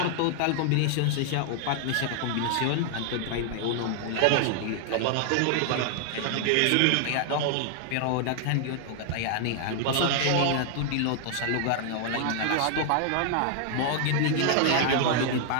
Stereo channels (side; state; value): both; different; correlation 0.00